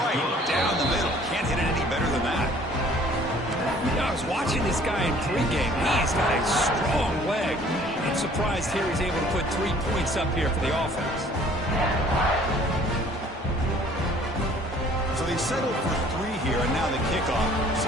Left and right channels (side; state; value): both; normal; correlation 0.55